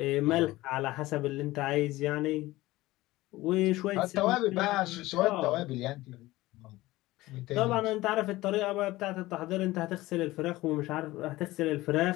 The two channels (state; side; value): quieter; right; 18.3 dB